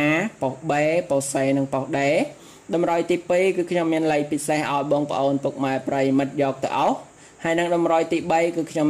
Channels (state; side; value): identical; both; correlation 1.00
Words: ប៉ុស B ប៉ុស C និងប៉ុស D តម្រុយទី2គឺខ្ញុំមានលេខពិសេសឲ្យបងប្អូនពុកម៉ែប្រិយមិត្តយកទៅអស់ហើយនឹងតម្រុយទី3គឺខ្ញុំ